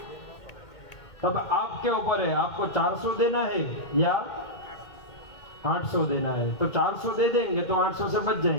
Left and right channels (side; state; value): right; late; 2.1 ms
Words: तब आपके ऊपर है, आपको 400 देना है या 800 देना है। तो 400 दे देंगे तो 800 से बच